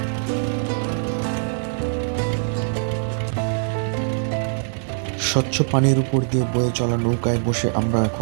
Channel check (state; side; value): silent; left; digital silence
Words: স্বচ্ছ পানির উপর দিয়ে বয়ে চলা নৌকায় বসে আমরা